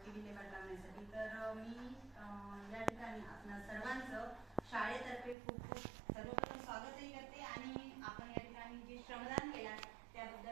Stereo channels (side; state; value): left; drops out; at 5.4 s